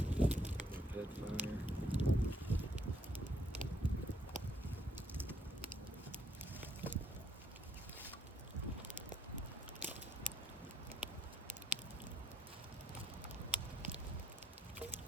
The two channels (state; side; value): normal; both; correlation 0.70